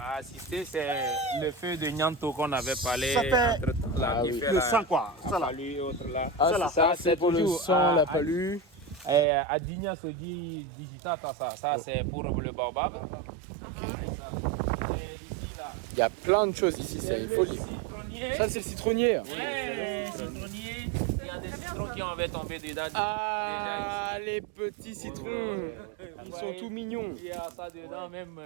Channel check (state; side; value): drops out; left; at 9.2 s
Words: assisté, c'est le feu de Nyanto qu'on avait parlé Ça fait entre-temps, là, Ah qui oui. fait Le la- sang, quoi. Ça la là. palue et autres là. Ah, Ça, là. ça, c'est pour le toujours sang, la à- palue. À Digna se dit digital, ça c'est pour le baobab. Il y a plein de choses ici, c'est une folie. Ça, c'est le citronnier. Citronnier, il y a des citrons qui avaient tombé dedans. Ah, les petits citrons. Ils sont tout mignons. Il y a ça dedans même